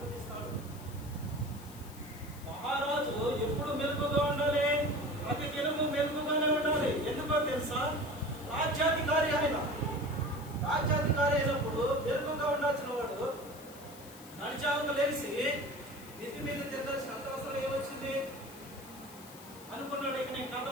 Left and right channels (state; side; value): noise; left; hiss, 19 dB below the sound